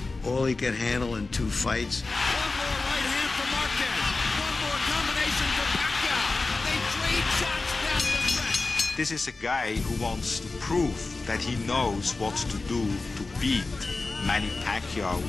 all he could handle in 2 fights. One more right hand for Marquez. One more combination for Pacquiao. They trade shots down the stretch. This is a guy who wants to prove that he knows what to do to beat Manny Pacquiao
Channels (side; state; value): right; quieter; 3.6 dB